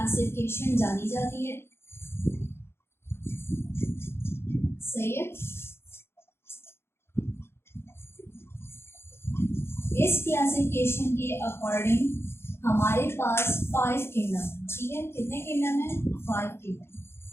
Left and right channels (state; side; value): late; right; 0.12 ms